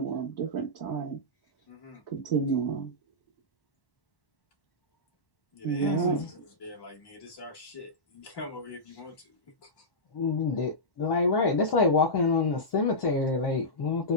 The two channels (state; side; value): late; right; 1.1 ms